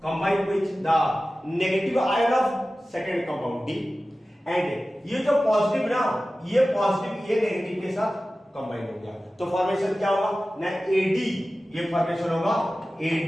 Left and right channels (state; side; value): normal; both; correlation 0.96